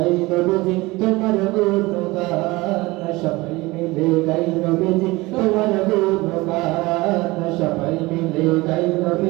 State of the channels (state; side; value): quieter; left; 21.5 dB